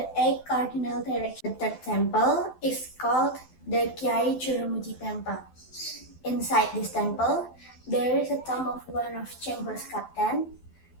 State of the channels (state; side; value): late; right; 12 ms